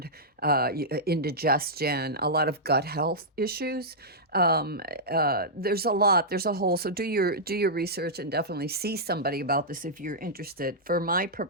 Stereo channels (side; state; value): both; normal; correlation -0.11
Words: indigestion, a lot of gut health issues. There's a lot, there's a whole, so do your research and definitely see somebody about this if you're interested. For my